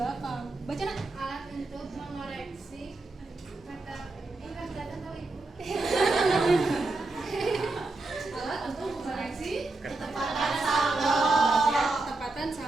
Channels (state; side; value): quieter; left; 3.2 dB